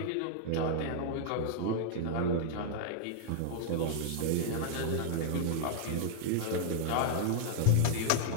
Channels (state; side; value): different; both; correlation -0.01